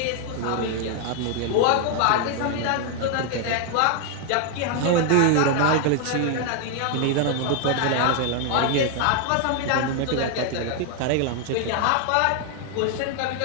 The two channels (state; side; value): different; both; correlation 0.00